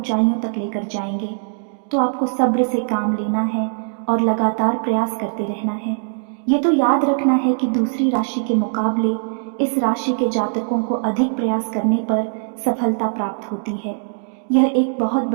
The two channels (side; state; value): left; silent; digital silence